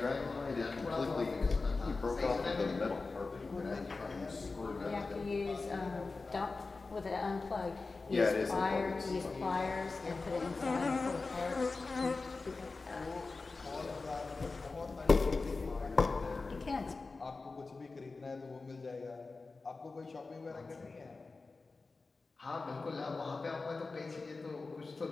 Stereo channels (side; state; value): right; quieter; 3.9 dB